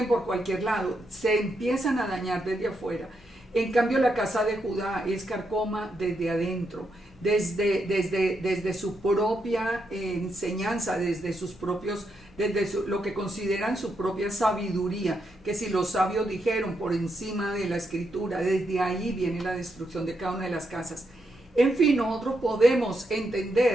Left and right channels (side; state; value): both; normal; correlation 0.81